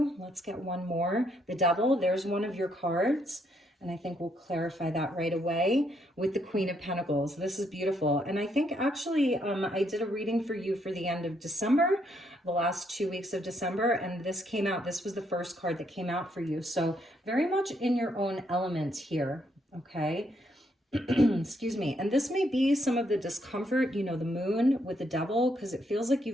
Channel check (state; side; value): normal; both; correlation 0.74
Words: Let's get one more. The Devil, there's one of your cards. And I think we'll clarify that right away with the Queen of Pentacles. This is beautiful. And I think actually I did a reading for you for the end of December, the last 2 weeks of December, and this came out. This was the first card that came out for you. So very much in your own element here, okay? Excuse me. And this may be some of the discomfort, you know, the moon with the Devil, because it feels like